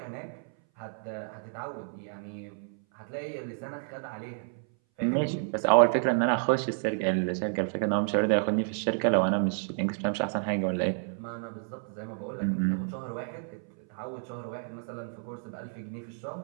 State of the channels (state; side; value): silent; left; 58 dB below the other